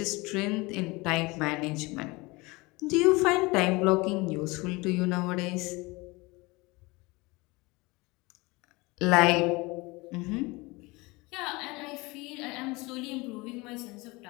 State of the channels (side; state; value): right; quieter; 24.1 dB